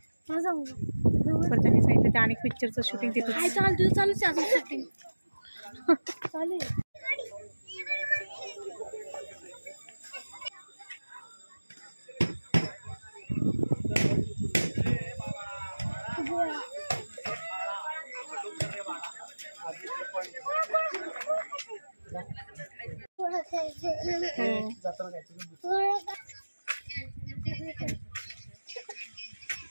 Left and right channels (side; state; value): both; inverted; correlation -1.00